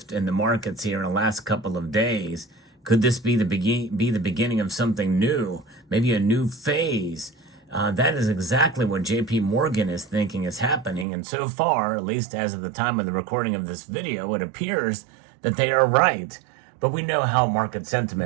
in the markets here in the last couple of days. Could this be the beginning of something new, maybe a new phase? That is exactly what JP Morgan is thinking is happening, and so far, at least as of the time of the recording of this video, it appears that they are right. But we know how market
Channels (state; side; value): drops out; left; at 11.1 s